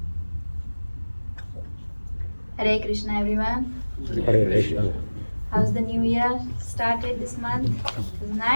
Hare Krishna everyone. Hare Krishna. How's the new year started this month? Is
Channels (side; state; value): both; inverted; correlation -1.00